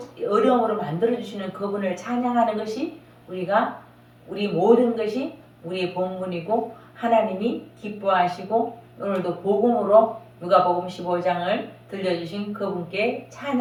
어려움으로 만들어주시는 그분을 찬양하는 것이 우리 모든 것이 우리의 본분이고 하나님이 기뻐하시고 오늘도 복음으로 누가복음 15장을 들려주신 그분께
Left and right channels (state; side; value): identical; both; correlation 1.00